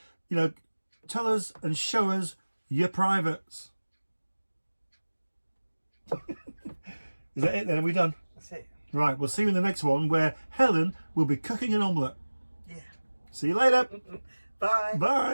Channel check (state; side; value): inverted; both; correlation -1.00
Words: Tell us and show us your privates. Is that it then? Are we done? That's it. Right, we'll see you in the next one where Helen will be cooking an omelette. Yeah. See you later. Bye.